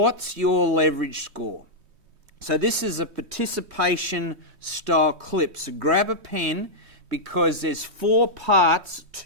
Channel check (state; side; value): late; left; 3.2 ms